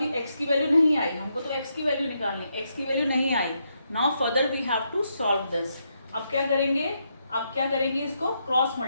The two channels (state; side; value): inverted; both; correlation -0.80